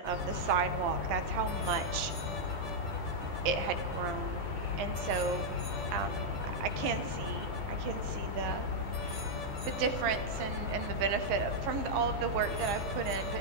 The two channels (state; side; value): late; left; 11 ms